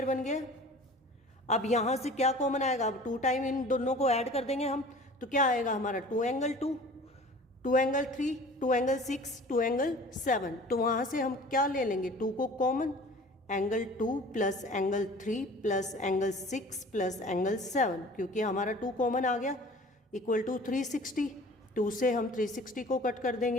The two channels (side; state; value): both; normal; correlation 0.44